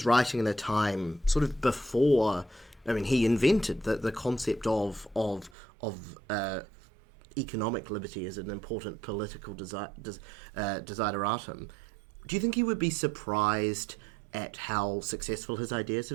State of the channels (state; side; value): drops out; left; at 5.6 s